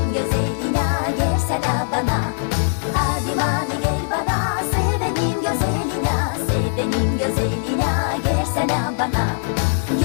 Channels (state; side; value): silent; right; 57 dB below the other